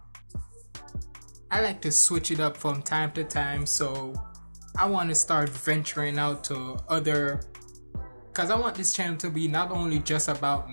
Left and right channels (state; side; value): inverted; both; correlation -1.00